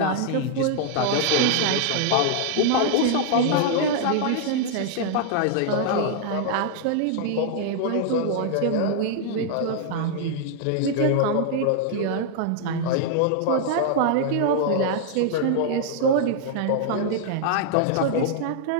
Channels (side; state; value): both; different; correlation 0.00